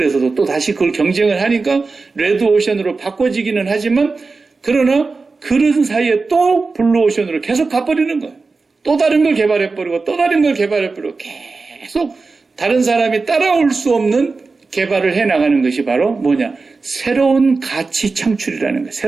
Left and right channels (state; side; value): quieter; left; 4.1 dB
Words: 또 다시 그걸 경쟁을 하니까 레드오션으로 바꿔지기는 하지만 그러나 그런 사이에 또 블루오션으로 계속 가버리는 거예요. 또 다른 걸 개발해버리고 또 다른 걸 개발해버리고 계속 다른 사람이 따라올 수 없는 개발을 해나가는 것이 바로 뭐냐? 새로운 가치 창출이라는 거예요.